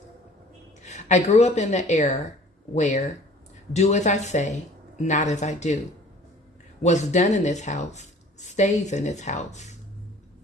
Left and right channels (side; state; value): both; normal; correlation 0.50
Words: I grew up in the era where do as I say, not as I do. What's done in this house stays in this house.